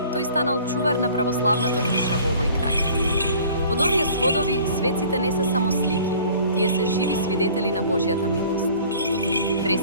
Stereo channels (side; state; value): both; inverted; correlation -0.50